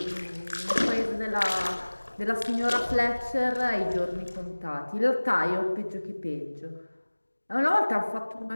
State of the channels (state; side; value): inverted; both; correlation -1.00